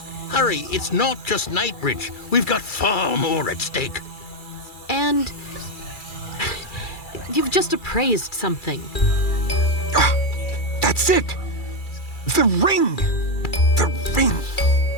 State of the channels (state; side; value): late; right; 2.3 ms